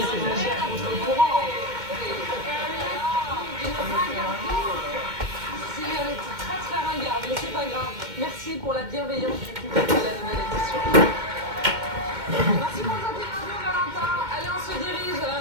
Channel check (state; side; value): late; left; 2.1 ms